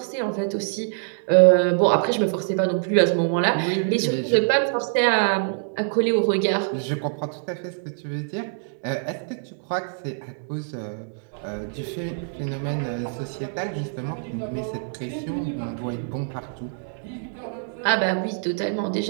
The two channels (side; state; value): left; silent; digital silence